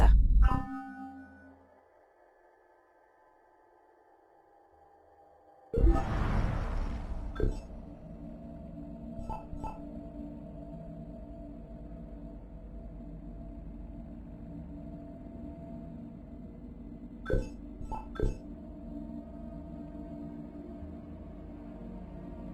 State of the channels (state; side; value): identical; both; correlation 1.00